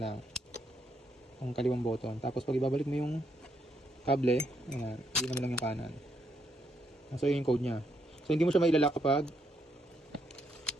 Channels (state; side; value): normal; both; correlation 0.76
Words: ang kaliwang button. Tapos pag ibabalik mo yung kable, ayan, hindi naman lang yung kanan. So yun yung code nya. So hindi mo siya mailalak kapag